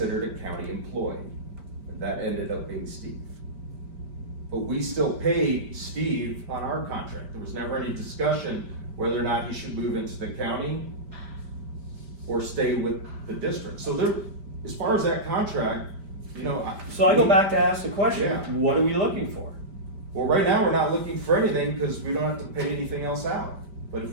a county employee. And that ended up being Steve. But we still paid Steve on our contract. There was never any discussion whether or not he should move into the county or stay with the district. So there, as far as that contract, you know. So I go back to ask the question, Yeah. what are we looking for? Well, right now, we're not looking for anything because we don't have to pay anything else out. But if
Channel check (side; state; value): left; late; 5.0 ms